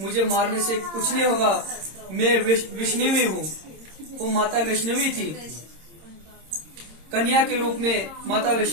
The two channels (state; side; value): late; left; 26 ms